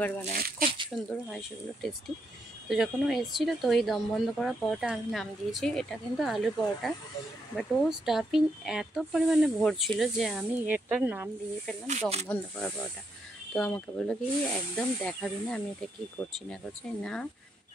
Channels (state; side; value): normal; both; correlation 0.78